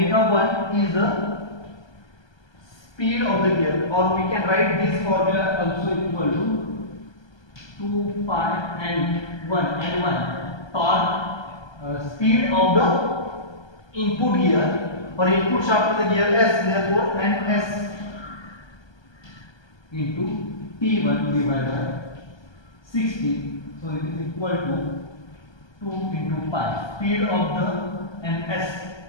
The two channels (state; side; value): late; right; 1.3 ms